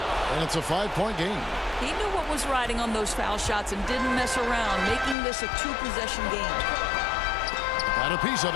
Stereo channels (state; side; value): drops out; right; at 5.2 s